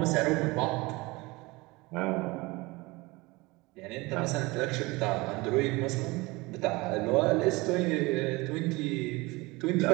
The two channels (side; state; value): left; quieter; 23.2 dB